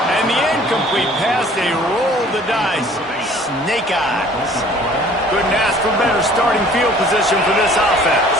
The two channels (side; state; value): both; normal; correlation 0.53